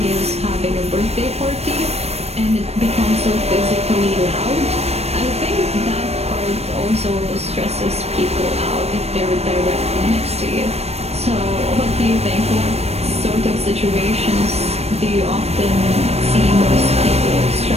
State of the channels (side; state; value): left; late; 0.31 ms